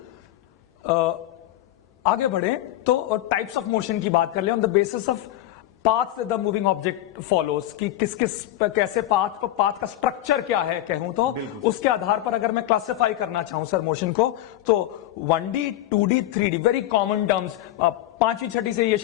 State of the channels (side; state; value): right; quieter; 14.1 dB